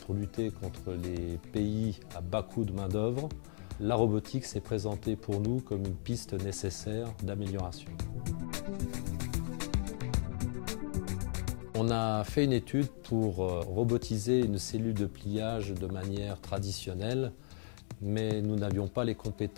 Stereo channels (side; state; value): right; silent; digital silence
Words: lutter contre les pays à bas coût de main-d'œuvre, la robotique s'est présentée pour nous comme une piste nécessaire d'amélioration. On a fait une étude pour robotiser une cellule de pliage de manière traditionnelle, mais nous n'avions pas les